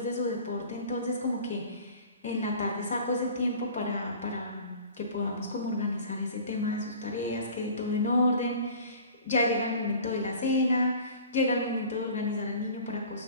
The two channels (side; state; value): both; inverted; correlation -0.44